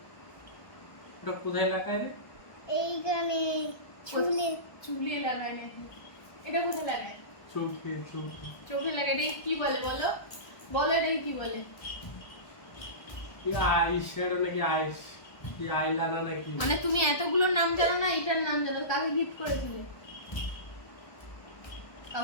ওটা কোথায় লাগায় রে? এইখানে চুলে চুলে লাগায় নাকি? এটা কোথায় লাগায়? চোখে চোখে। চোখে লাগায়। এটাকে কি বলে বলো? বলো এটাকে কি বলে? এই আই শ্যাডো নাকি আইস, কি আইলাইনার নাকি? মানে তুমি এতগুলো নাম জানো না, এটার নাম জানো। কাকে গিফট করেছিলে?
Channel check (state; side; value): late; right; 1.2 ms